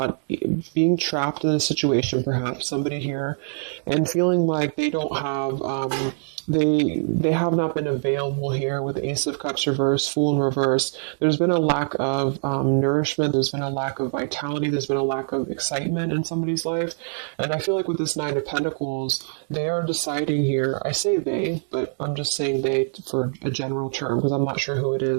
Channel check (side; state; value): left; silent; digital silence